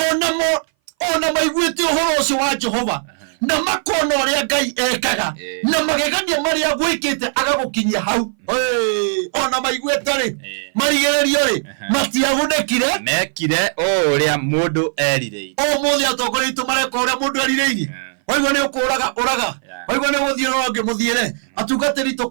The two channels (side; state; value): left; silent; 60 dB below the other